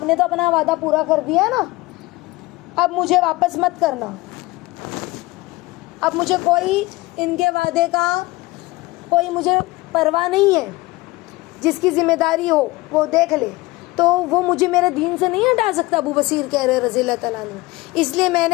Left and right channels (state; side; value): quieter; right; 20.9 dB